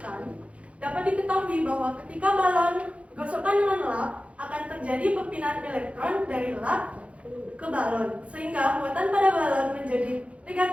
dapat diketahui bahwa ketika balon digosokkan dengan lap, akan terjadi perpindahan elektron dari lap ke balon, sehingga muatan pada balon menjadi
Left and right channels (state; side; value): late; left; 0.063 ms